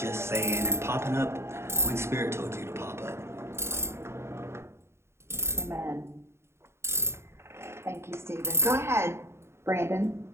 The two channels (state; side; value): late; left; 0.13 ms